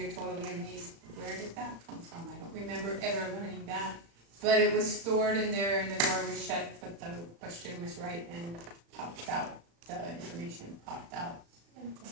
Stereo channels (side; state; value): left; late; 35 ms